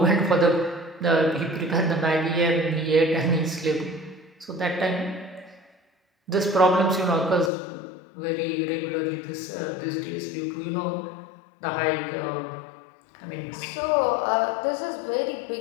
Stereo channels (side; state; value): right; drops out; at 7.5 s